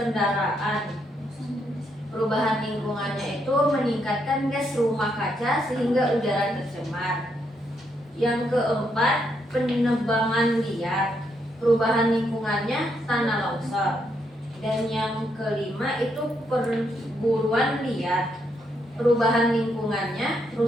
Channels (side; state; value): both; normal; correlation 0.77